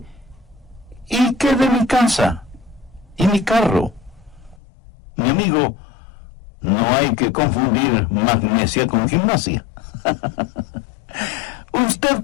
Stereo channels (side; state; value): right; drops out; at 4.6 s